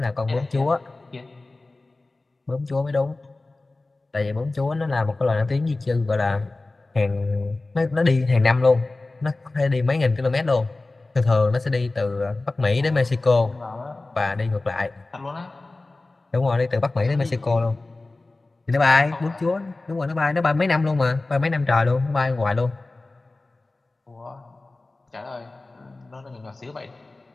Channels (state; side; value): quieter; right; 3.2 dB